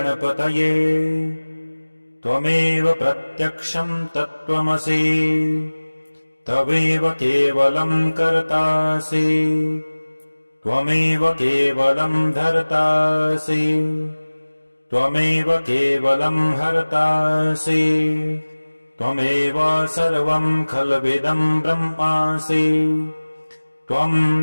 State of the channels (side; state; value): both; inverted; correlation -1.00